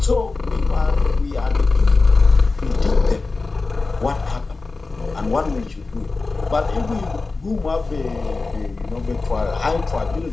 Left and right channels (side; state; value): right; quieter; 3.7 dB